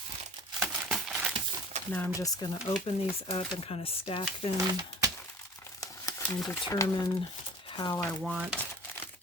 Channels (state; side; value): normal; both; correlation 0.44